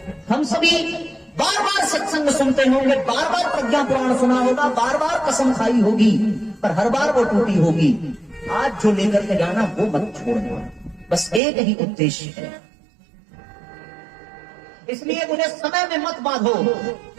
हम सभी बार बार सत्संग सुनते होंगे, बार बार प्रज्ञा पुराण सुना होगा, बार बार कसम खाई होगी, पर हर बार वो टूटी होगी। आज जो लेकर के जाना वो मत छोड़ना, बस एक ही उद्देश्य है। इसलिए मुझे समय में मत बांधो,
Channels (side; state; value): left; drops out; at 11.4 s